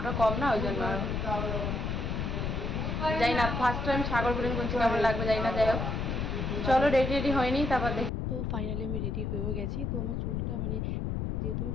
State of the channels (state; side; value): noise; left; rumble, 1 dB below the sound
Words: কম না, ওই জন্য যাই না। ফার্স্ট টাইম সাগর বলে বলছি, কেমন লাগবে যাই না। যাই হোক, চলো রেডি হয়নি, তারপর দেখি। তো ফাইনালি আমি রেডি হয়েও গেছি। তো আমার চুলটা মানে যেহেতু আমি